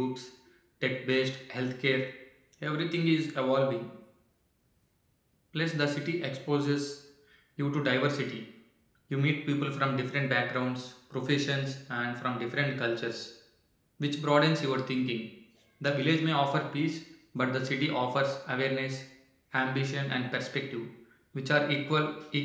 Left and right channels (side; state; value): both; identical; correlation 1.00